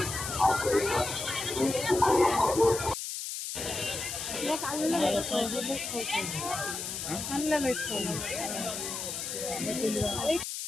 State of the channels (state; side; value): noise; left; hiss, 5 dB below the sound